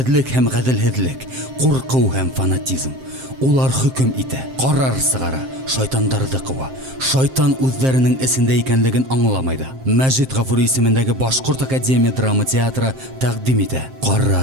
һәм ғәделһеҙлек, ҡурҡыу һәм фанатизм. Улар хөкөм итә, ҡарар сығара, шайтандарҙы ҡыуа. Шайтан үҙҙәренең эсендә икәнлеген аңламай ҙа. Мәжит Ғафури исемендәге Башҡорт академия драма театры тәҡдим итә.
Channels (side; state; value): left; late; 7.6 ms